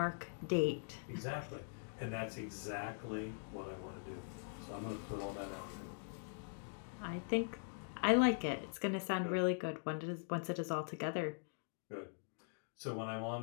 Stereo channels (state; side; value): silent; right; digital silence